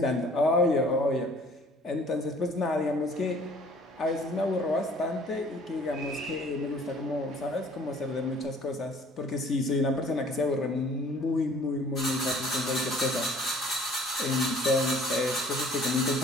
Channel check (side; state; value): both; normal; correlation 0.53